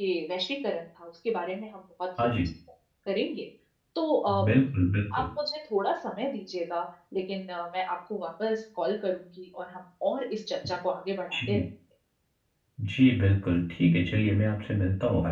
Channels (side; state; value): both; identical; correlation 1.00